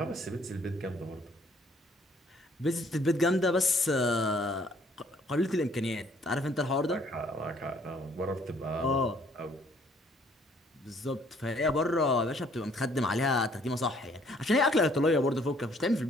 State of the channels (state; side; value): normal; both; correlation 0.62